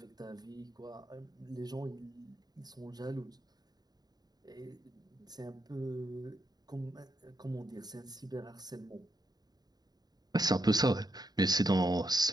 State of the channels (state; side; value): late; left; 0.19 ms